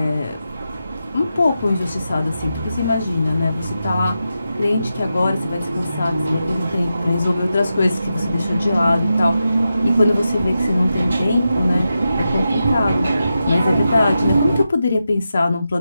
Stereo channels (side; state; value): both; inverted; correlation -0.89